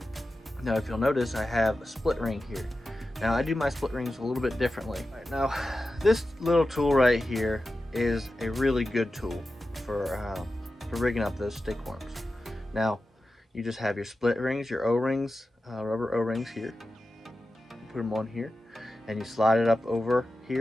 Now, if you'll notice, I have a split ring here. Now, I do my split rings a little bit differently. Right, now, this little tool right here is a really good tool for rigging up those stick worms. Now, you just have your split rings, your O-rings, rubber O-rings here. Put them on here, and you slide it up over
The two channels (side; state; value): both; normal; correlation 0.92